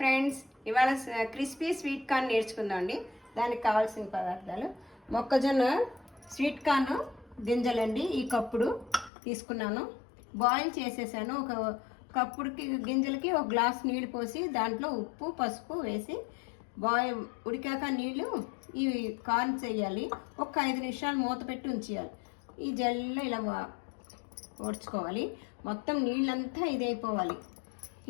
ఇవాళ crispy sweet corn నేర్చుకుందామండి. దానికి కావాల్సిన పదార్థాలు: మొక్కజొన్న స్వీట్ కార్న్ గింజలండి, ఈ కప్పుడు తీసుకున్నాను. బాయిల్ చేసేసాను. ఒక కప్పుడుకి గింజలకి ఒక గ్లాస్ నీళ్ళు పోసి దాంట్లో ఉప్పు పసుపు వేసి ఉడికాక నీళ్ళు ఈ కార్న్ చేయాలి. ఒక 5 నిమిషాలు మూత పెట్టి ఉంచేయాలి. ఈ జల్లో ఇలా ఓడ్చుకోవాలి. మొత్తం నీళ్ళంతా ఇదైపోవాలి.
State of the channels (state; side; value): drops out; right; at 9.1 s